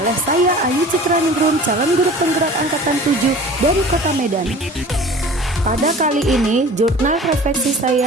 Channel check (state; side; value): normal; both; correlation 0.42